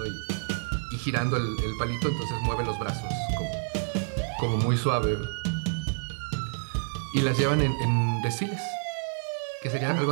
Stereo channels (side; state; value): left; silent; digital silence